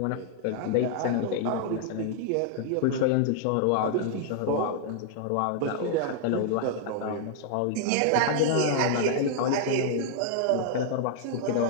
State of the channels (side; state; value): both; different; correlation -0.01